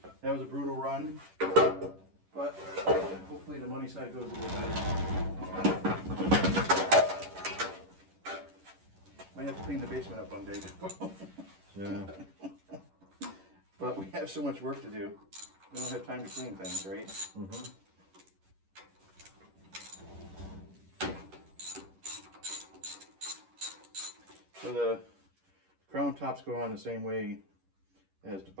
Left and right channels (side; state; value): left; late; 11 ms